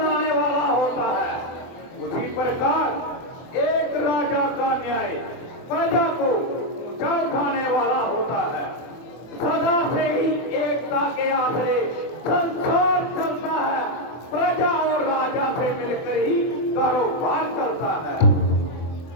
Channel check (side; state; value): right; late; 24 ms